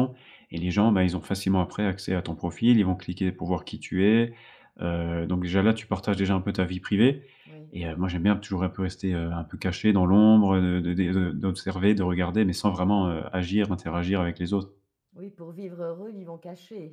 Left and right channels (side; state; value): both; identical; correlation 1.00